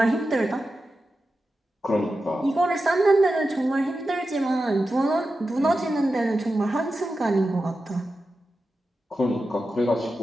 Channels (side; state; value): both; normal; correlation 0.91